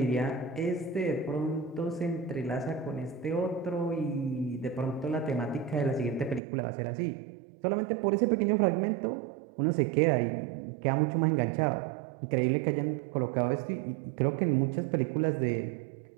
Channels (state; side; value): drops out; left; at 6.4 s